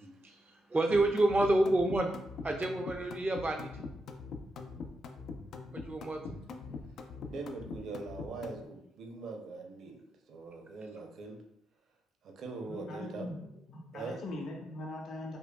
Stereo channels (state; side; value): normal; both; correlation 0.86